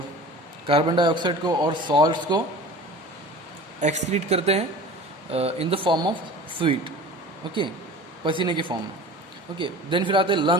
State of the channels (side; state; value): both; normal; correlation 0.39